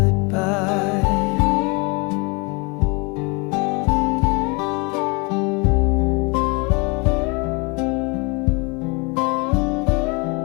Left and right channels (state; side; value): quieter; right; 29.8 dB